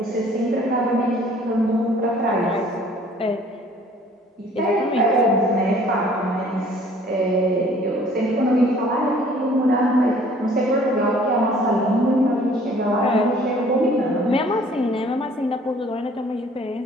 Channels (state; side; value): normal; both; correlation 0.55